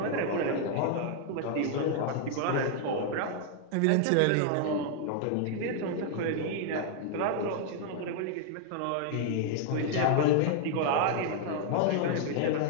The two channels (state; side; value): different; both; correlation 0.00